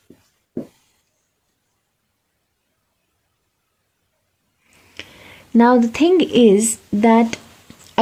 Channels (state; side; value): identical; both; correlation 1.00